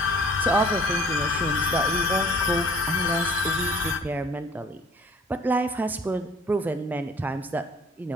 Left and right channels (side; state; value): both; normal; correlation 0.52